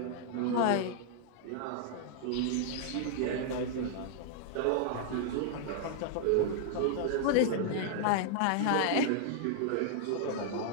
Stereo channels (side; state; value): both; different; correlation -0.01